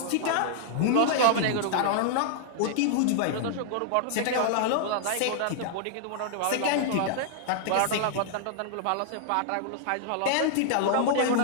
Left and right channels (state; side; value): different; both; correlation -0.01